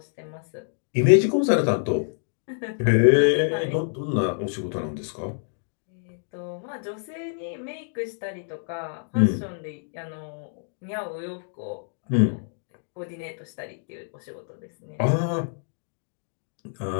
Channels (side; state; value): right; silent; digital silence